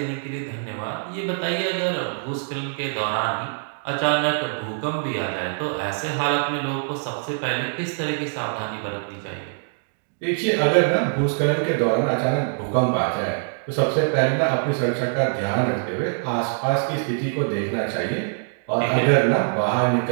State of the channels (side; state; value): left; silent; digital silence